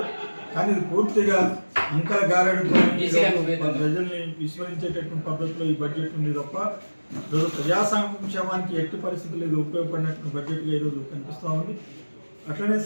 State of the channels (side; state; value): both; inverted; correlation -1.00